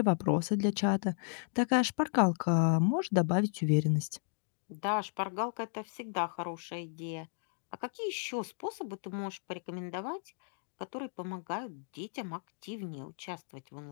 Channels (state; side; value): silent; right; digital silence